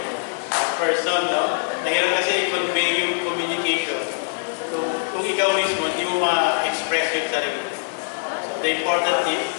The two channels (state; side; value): silent; right; digital silence